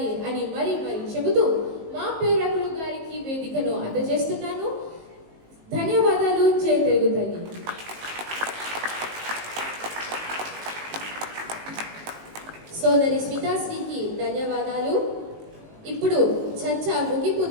అని మరి చెబుతూ మా ప్రేరకులు గారికి వేదికను అందజేస్తున్నాను. ధన్యవాదాలు. జై తెలుగు తల్లి. సోదరి స్మితాశ్రీకి ధన్యవాదాలు. ఇప్పుడు చర్చ ముగింపు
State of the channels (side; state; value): left; late; 19 ms